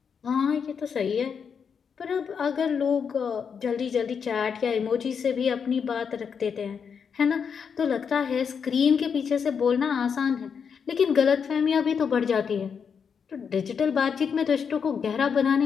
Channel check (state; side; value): quieter; right; 6.6 dB